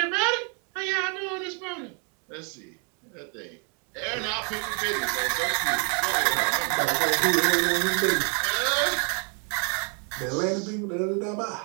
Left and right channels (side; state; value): left; quieter; 38.4 dB